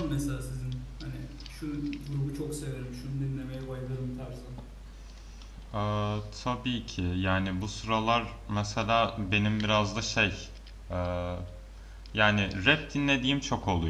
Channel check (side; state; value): both; identical; correlation 1.00